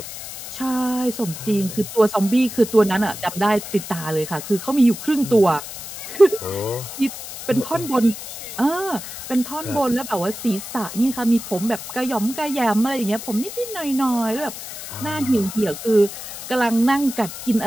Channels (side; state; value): left; noise; hiss, 10 dB below the sound